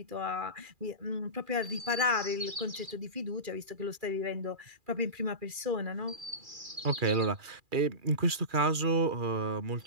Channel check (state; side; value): late; left; 2.4 ms